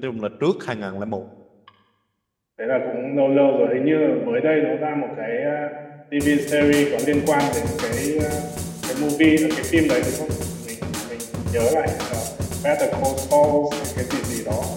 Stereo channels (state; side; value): identical; both; correlation 1.00